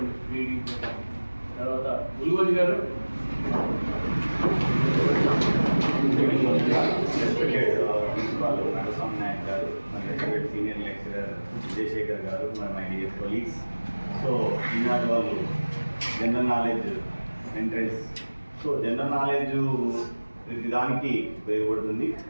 రీడింగ్ తర్వాత ఉల్వోజు గారు ప్రిన్సిపాల్ నరసింహ నాయక్ గారు, మరి సీనియర్ లెక్చరర్ విజయశేఖర్ గారు, మరి మై డియర్ కొలీగ్స్. సో ఈనాడు వాళ్ళు general knowledge entrance, so general knowledge ప్రతి దానికి ఉపయోగపడుతుంది.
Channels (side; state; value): both; inverted; correlation -1.00